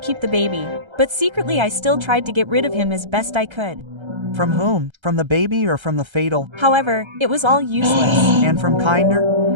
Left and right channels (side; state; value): left; late; 1.3 ms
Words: the baby, but secretly I still tried to get rid of him as best I could. From whom? From the baby or from the fatal? However, it was all useless. And from kinder?